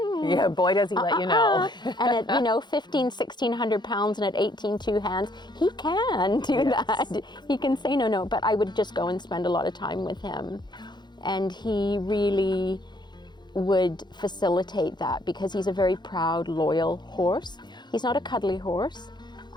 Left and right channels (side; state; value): right; late; 0.21 ms